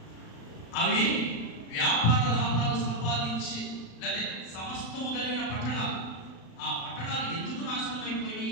అవి వ్యాపార లాభాలు సంపాదించి లేదా సమస్తము కలిగిన పట్టణాలు. ఆ పట్టణాలు ఎందుకు నాశనం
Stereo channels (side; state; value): right; late; 35 ms